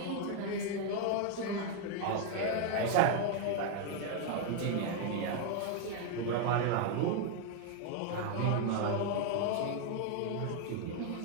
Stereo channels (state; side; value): different; both; correlation 0.01